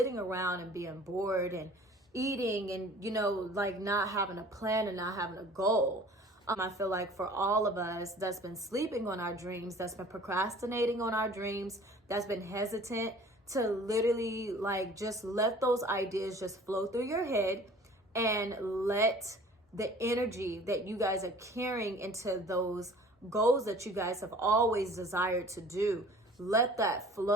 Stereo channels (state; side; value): normal; both; correlation 0.48